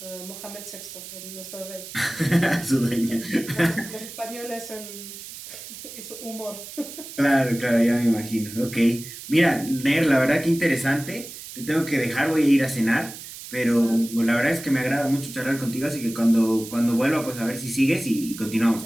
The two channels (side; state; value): right; noise; hiss, 13 dB below the sound